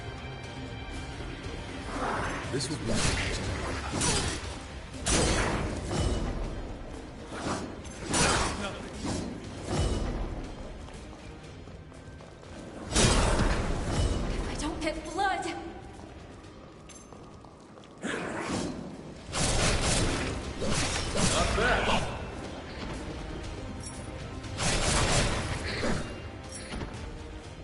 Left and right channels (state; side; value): identical; both; correlation 1.00